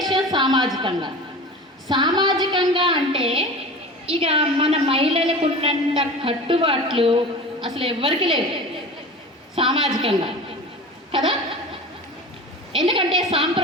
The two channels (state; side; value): normal; both; correlation 0.34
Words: సామాజికంగా. సామాజికంగా అంటే ఇక మన మహిళలకు ఉన్నంత కట్టుబాట్లు అసలు ఎవ్వరికి లేవు సామాజికంగా కదా. ఎందుకంటే